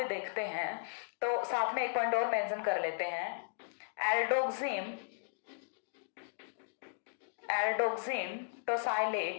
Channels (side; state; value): right; silent; digital silence